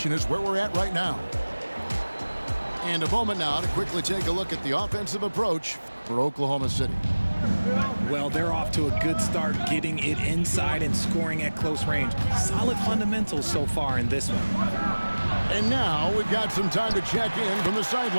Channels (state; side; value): inverted; both; correlation -1.00